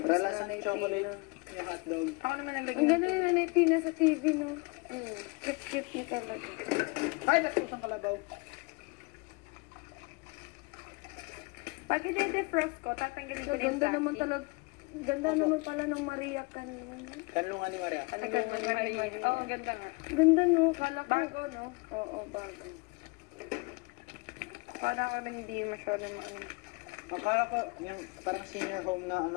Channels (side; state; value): right; quieter; 28.4 dB